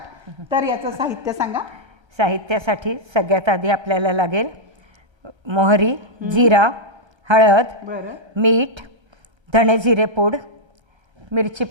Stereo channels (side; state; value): left; late; 1.3 ms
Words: तर याचं साहित्य सांगा। साहित्यासाठी सगळ्यात आधी आपल्याला लागेल मोहरी, जिरा, हळद, बरं, मीठ, धणे जिरे पूड, मिरची